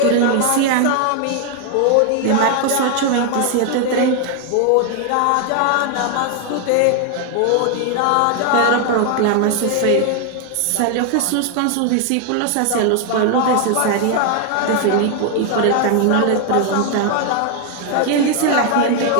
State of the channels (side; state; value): both; different; correlation 0.00